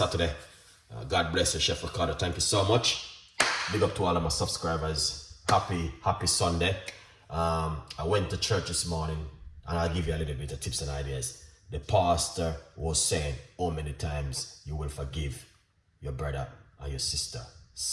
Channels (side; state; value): both; identical; correlation 1.00